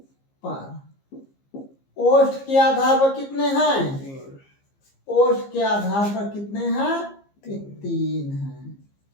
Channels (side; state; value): right; late; 15 ms